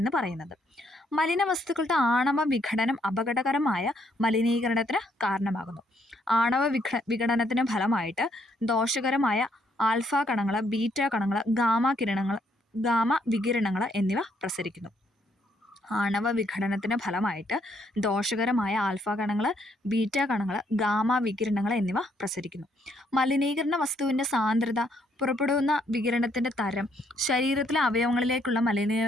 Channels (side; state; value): both; normal; correlation 0.71